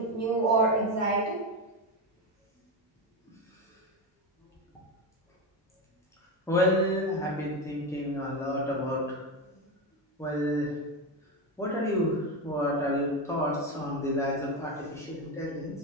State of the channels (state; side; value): normal; both; correlation 0.15